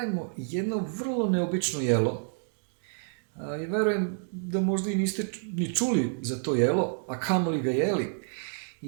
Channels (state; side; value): silent; left; digital silence